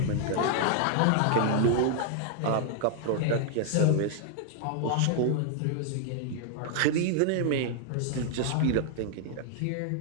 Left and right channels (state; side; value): different; both; correlation 0.00